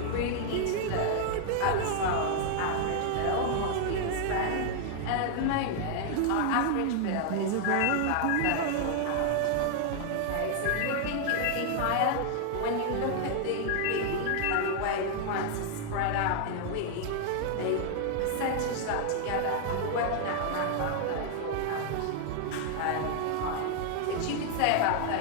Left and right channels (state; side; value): different; both; correlation 0.00